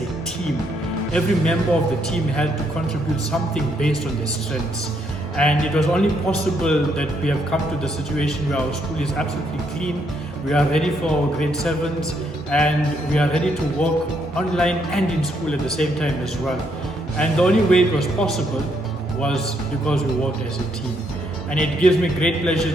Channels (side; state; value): both; normal; correlation 0.74